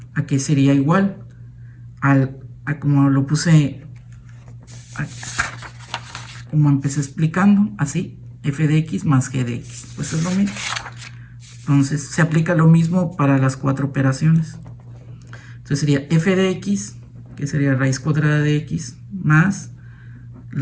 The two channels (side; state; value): both; identical; correlation 1.00